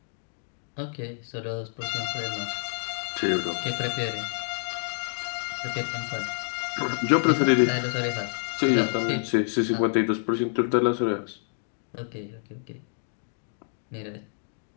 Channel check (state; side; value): silent; right; digital silence